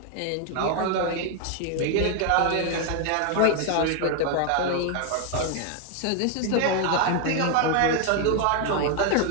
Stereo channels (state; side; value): different; both; correlation 0.01